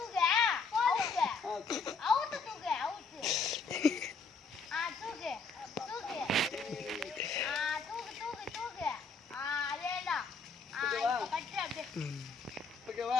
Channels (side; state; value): right; quieter; 4.5 dB